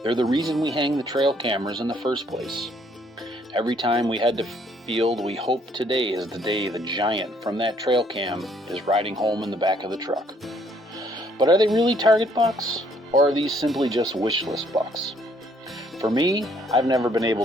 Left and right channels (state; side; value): normal; both; correlation 0.65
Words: They're the reason we hang the trail cameras in the first place. Every time we head to field, we hope today is the day the giant from that trail cam is riding home in the back of the truck. But are they really target bucks, or are these simply just wish list bucks? For me, I've never been able